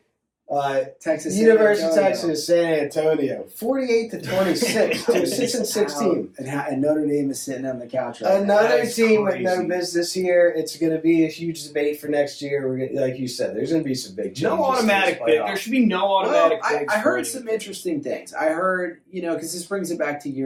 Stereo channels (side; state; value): both; identical; correlation 1.00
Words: Texas University of San Antonio. Texas San Antonio, 48-26 to a 6-16. And Notre Dame is sitting on the couch right now. Another That's team with no crazy. business here. It's going to be a huge debate for next year. Like you said, there's going to be some big changes. No automatic to pick. this There playoff. should be no automatic Well, picks. I for heard anyone. some interesting things. I heard, because this brings it back to